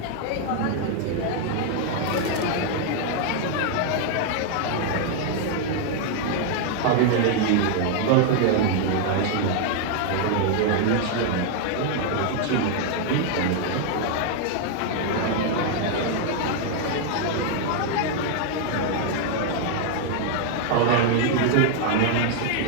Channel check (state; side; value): different; both; correlation 0.00